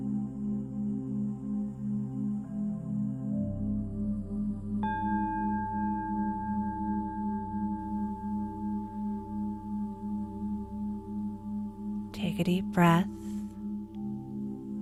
Take a deep breath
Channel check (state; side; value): identical; both; correlation 1.00